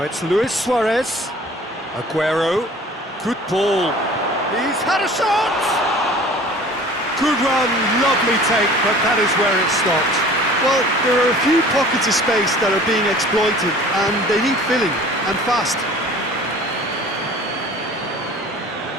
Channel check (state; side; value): normal; both; correlation 0.46